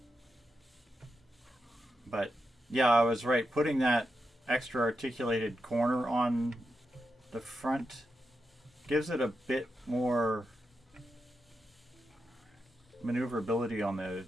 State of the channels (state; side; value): normal; both; correlation 0.87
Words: But yeah, I was right. Putting that extra articulated corner on the front gives it a bit more maneuverability on the